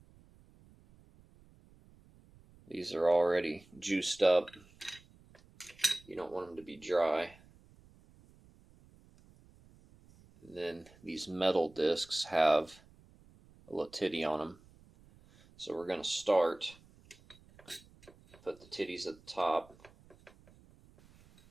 These are already juiced up. You don't want them to be dry. And then these metal discs have a little titty on them. So we're going to start, put the titties at the top.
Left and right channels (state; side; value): noise; right; rumble, 26 dB below the sound